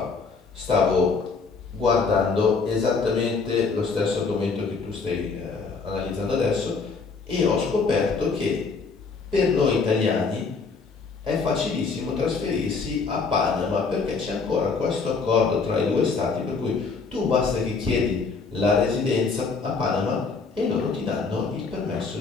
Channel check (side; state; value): right; quieter; 4.7 dB